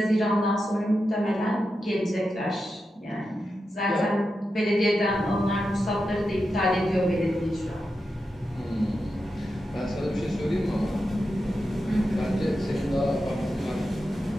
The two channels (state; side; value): normal; both; correlation 0.89